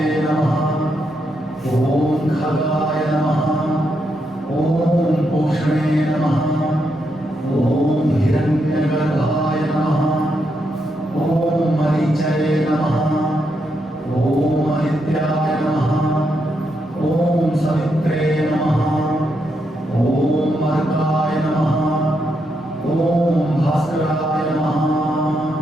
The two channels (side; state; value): both; normal; correlation 0.81